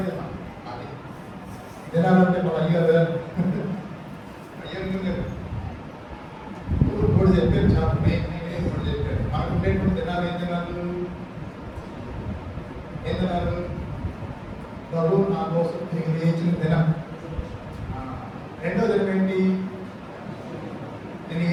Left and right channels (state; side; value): identical; both; correlation 1.00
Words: దినం. అది దినాలంటే మన అయ్యారు కూడా చెప్పారు. చాలా నేను కూడా చెప్పారు. మనకు ఉండేటువంటి దినాలు ఏం దినాలు? ప్రభు నా కోసం తిరిగి లేచిన దినం. రెండో దినం ఏంటి? నేను